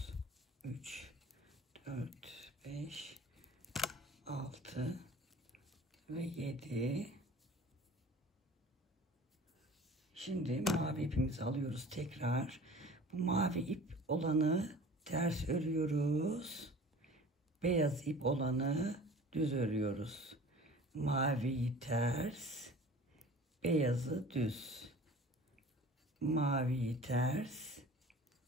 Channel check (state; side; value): normal; both; correlation 0.43